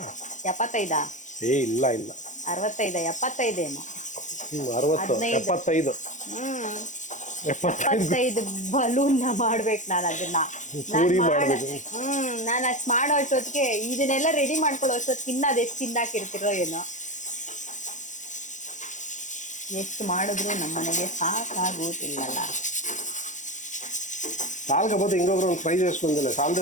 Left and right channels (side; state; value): right; late; 0.36 ms